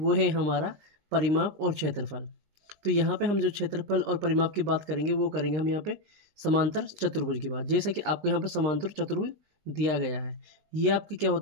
है हमारा परिमाप और क्षेत्रफल। तो यहाँ पे हम जो क्षेत्रफल और परिमाप की बात करेंगे वो करेंगे हम यहाँ पे समांतर चतुर्भुज की बात। जैसा कि आपको यहाँ पर समांतर चतुर्भुज दिया गया है, ये आपका क्या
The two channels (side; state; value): left; late; 19 ms